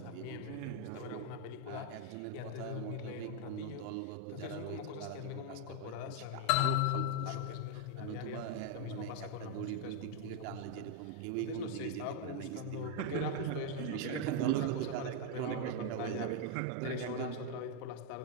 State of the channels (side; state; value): both; different; correlation 0.01